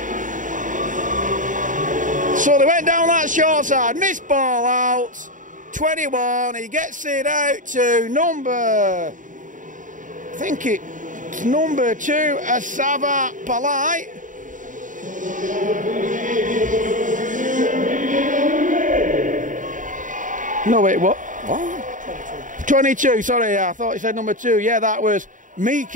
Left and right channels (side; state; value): left; late; 0.38 ms